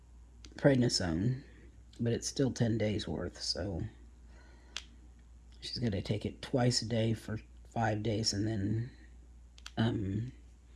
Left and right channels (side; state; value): both; identical; correlation 1.00